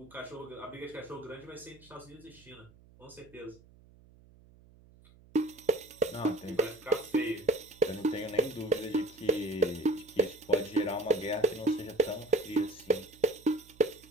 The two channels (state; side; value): noise; right; hum, 25 dB below the sound